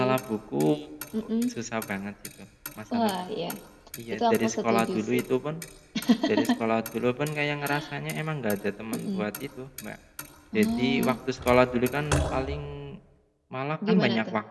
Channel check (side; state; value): both; identical; correlation 1.00